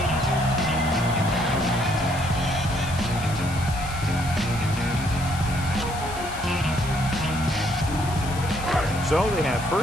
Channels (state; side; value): noise; left; hiss, 14 dB below the sound